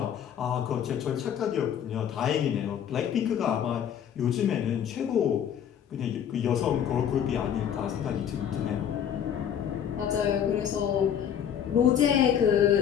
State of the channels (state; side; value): quieter; right; 9.1 dB